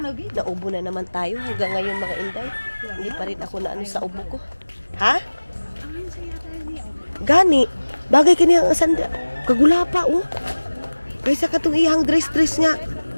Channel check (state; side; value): inverted; both; correlation -1.00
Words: Naubo na naman tayo hanggang ngayon mga inday. Hindi pa rin ako na ano sa ubo ko. Ha? Gani. Bagay ka niya ang sanda. Kagula pa, oh. Kaysa katong ihang dress-dress nga.